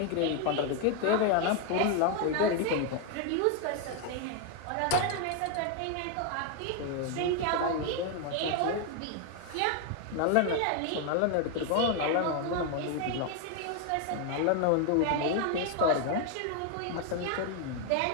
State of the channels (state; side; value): different; both; correlation 0.01